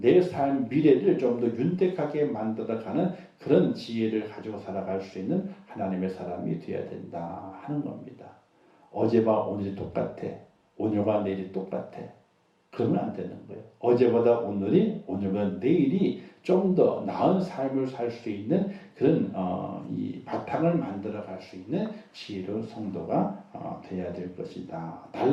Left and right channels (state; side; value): identical; both; correlation 1.00